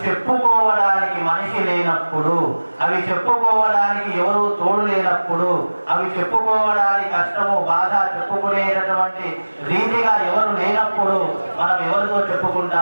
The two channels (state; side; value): inverted; both; correlation -1.00